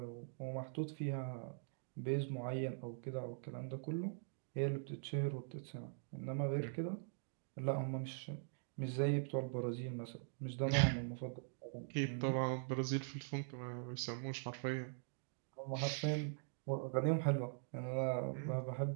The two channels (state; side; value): silent; left; digital silence